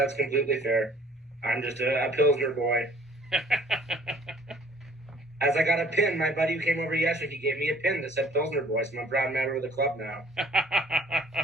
completely fair. I'm just a Pilsner boy. As I got a pin, my buddy who came over yesterday, he gave me a pin that said Pilsner boy, so I'm a proud member of the club now.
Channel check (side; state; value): both; normal; correlation 0.54